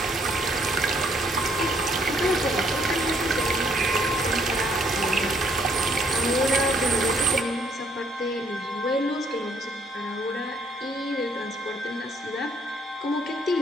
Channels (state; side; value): normal; both; correlation 0.66